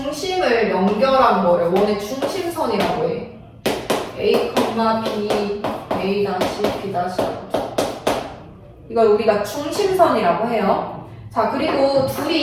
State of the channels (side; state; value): both; identical; correlation 1.00